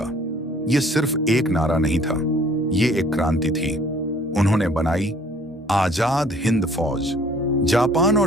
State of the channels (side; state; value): both; normal; correlation 0.55